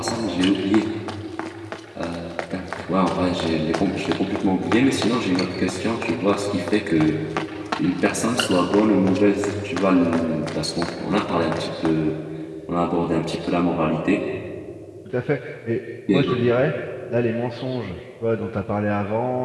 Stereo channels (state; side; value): identical; both; correlation 1.00